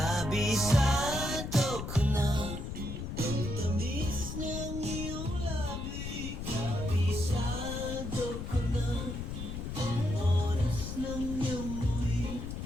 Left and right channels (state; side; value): noise; left; rumble, 6 dB below the sound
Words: ko na ang tamis ng iyong labi. Kabisado ko na ang oras ng iyong muwi.